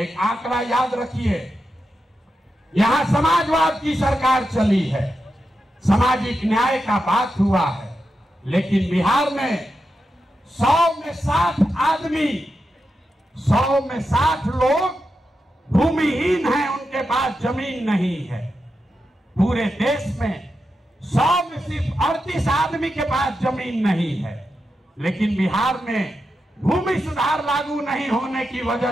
आंकड़ा याद रखिए, यहाँ समाजवाद की सरकार चली है, सामाजिक न्याय का बात हुआ है, लेकिन बिहार में 100 में 60 आदमी, 100 में 60 लोग भूमिहीन हैं, उनके पास जमीन नहीं है। पूरे देश में 100 में सिर्फ 38 आदमी के पास जमीन नहीं है, लेकिन बिहार में भूमि सुधार लागू नहीं होने की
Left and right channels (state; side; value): normal; both; correlation 0.88